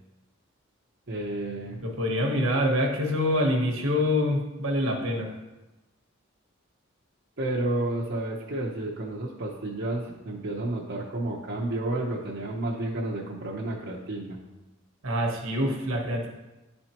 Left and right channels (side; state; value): both; normal; correlation 0.40